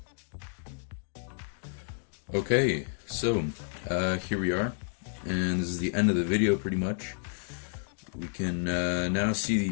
Okay, so here we are, and this is the end of the video pretty much. We can now see the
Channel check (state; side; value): silent; right; digital silence